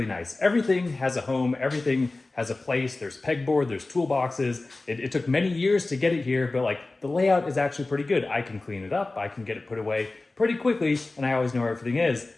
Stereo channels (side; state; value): right; quieter; 3.2 dB